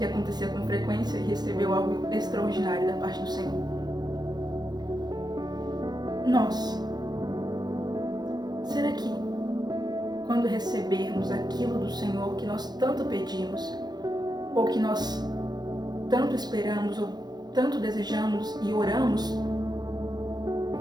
acontecia com frequência, e recebeu algo extraordinário da parte do Senhor. Nós, será que quando recebermos aquilo do Senhor que nós tanto pedimos, ou que nós tanto esperamos, ou tanto desejamos e oramos, o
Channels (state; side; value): late; left; 0.20 ms